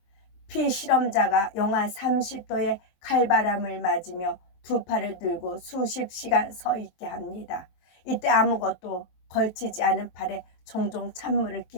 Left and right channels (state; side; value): late; right; 23 ms